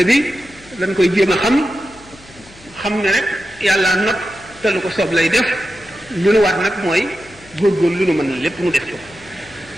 bi dañ koy jéem a xam ne rek yàlla not te lu ko soob lay def lu nu waat nag mooy góorgóorlu lu nu mën lépp mu def ko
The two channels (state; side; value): noise; left; hum, 24 dB below the sound